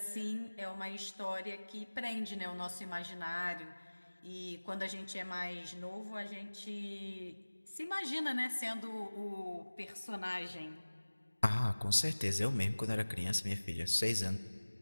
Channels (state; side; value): inverted; both; correlation -1.00